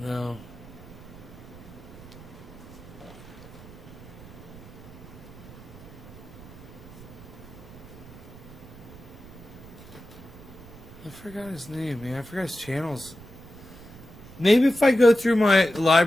No. I forgot his name, man. I forgot his channels. Maybe if I go through my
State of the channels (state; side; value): noise; right; rumble, 17 dB below the sound